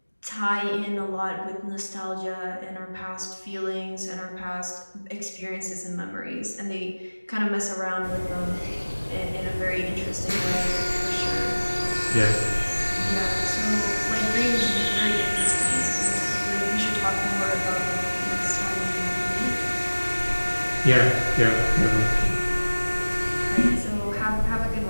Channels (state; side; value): inverted; both; correlation -1.00